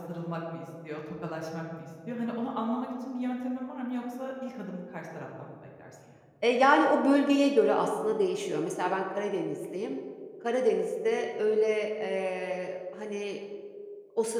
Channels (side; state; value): both; identical; correlation 1.00